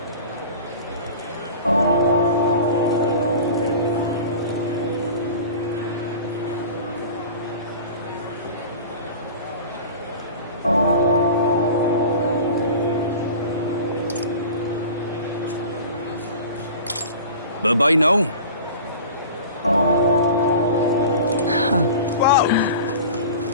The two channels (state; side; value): inverted; both; correlation -0.38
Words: Bye-bye now. Whoa!